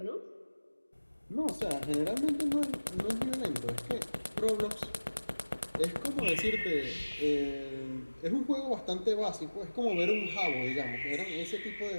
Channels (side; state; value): both; inverted; correlation -1.00